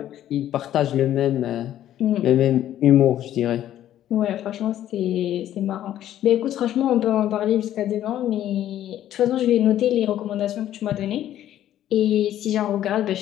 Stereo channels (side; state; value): right; quieter; 12.0 dB